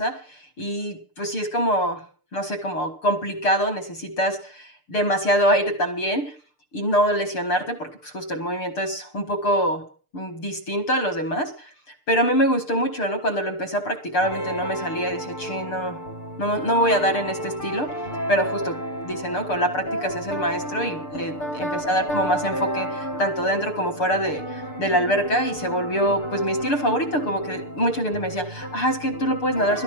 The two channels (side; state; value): right; late; 6.7 ms